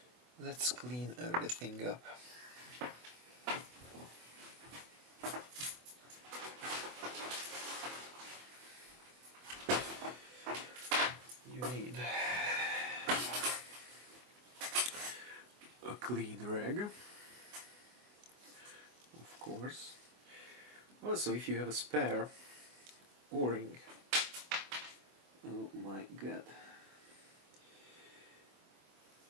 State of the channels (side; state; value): left; late; 24 ms